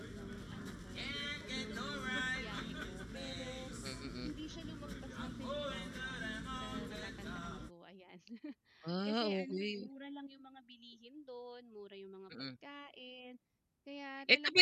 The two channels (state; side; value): identical; both; correlation 1.00